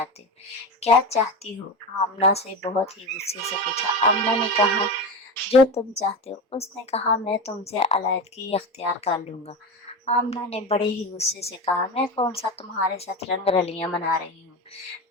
کیا چاہتی ہو؟ آمنہ سے بہت ہی غصے سے پوچھا۔ آمنہ نے کہا جو تم چاہتے ہو۔ اس نے کہا میں تم سے علیحدگی اختیار کر لوں گا۔ آمنہ نے بڑے ہی غصے سے کہا میں کون سا تمہارے ساتھ رنگ رلیاں منا رہی ہوں؟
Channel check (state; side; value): normal; both; correlation 0.23